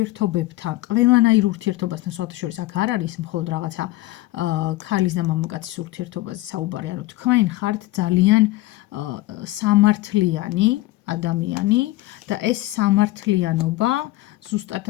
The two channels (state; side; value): quieter; right; 18.2 dB